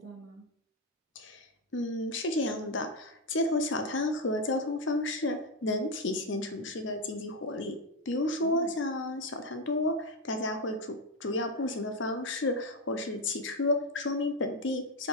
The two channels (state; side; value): normal; both; correlation 0.09